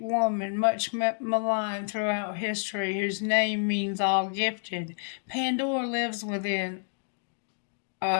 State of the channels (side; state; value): right; silent; digital silence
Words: woman, much maligned throughout history, whose name means all gifted. Pandora lives within